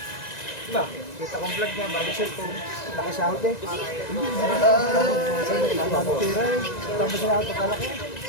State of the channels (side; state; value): right; late; 1.9 ms